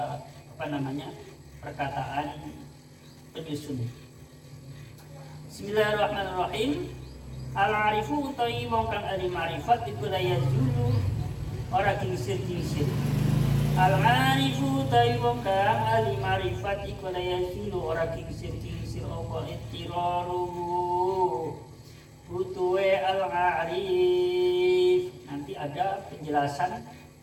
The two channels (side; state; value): both; identical; correlation 1.00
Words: perkataan penyusun. Bismillahirrahmanirrahim. Al-arifu utawi wong kang ahli ma'rifat iku la yazulu ora kingsir-kingsir. Al-arifu utawi wong kang ahli ma'rifat iku la yazulu ora kingsir-kingsir apa ittiraru butuhe al-arif. Nanti ada penjelasan